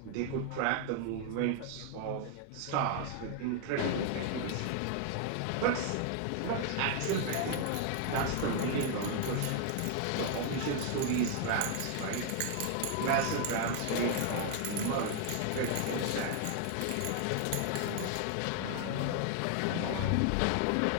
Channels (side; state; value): both; different; correlation 0.00